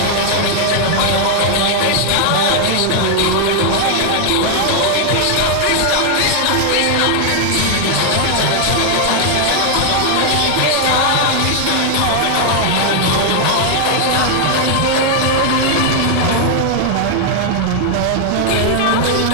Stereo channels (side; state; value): both; different; correlation 0.00